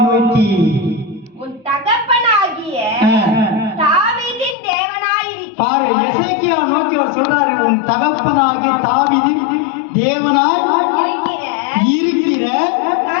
உன் தகப்பனாகிய தாவீதின் தேவனாயிருக்கிற. பாரு, எசேக்கியா நோக்கி அவர் சொல்றாரு, உன் தகப்பனாகிய தாவீதின் தேவனாய் இருக்கிற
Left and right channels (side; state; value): right; drops out; at 4.5 s